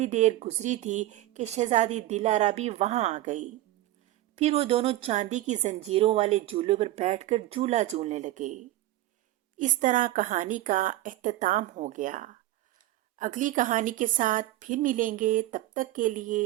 دیر گزری تھی کہ شہزادی دلارا بھی وہاں آ گئی۔ پھر وہ دونوں چاندی کی زنجیروں والے جھولے پر بیٹھ کر جھولا جھولنے لگے۔ اس طرح کہانی کا اختتام ہو گیا۔ اگلی کہانی کے ساتھ پھر ملیں گے، تب تک کے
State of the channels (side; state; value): left; quieter; 15.6 dB